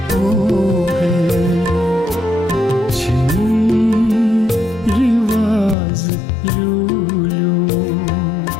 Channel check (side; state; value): right; drops out; at 5.8 s